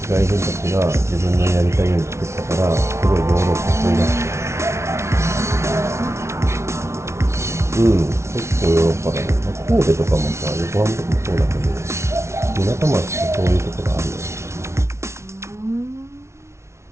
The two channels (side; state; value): left; late; 0.13 ms